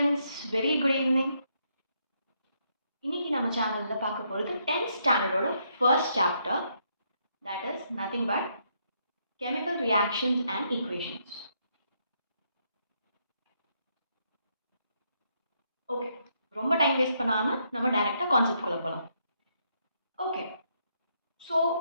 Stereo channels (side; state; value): both; inverted; correlation -0.75